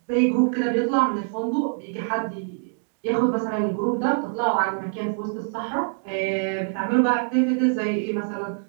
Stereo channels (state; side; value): silent; left; digital silence